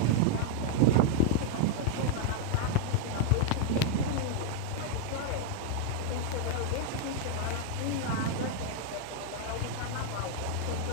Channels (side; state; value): both; different; correlation 0.00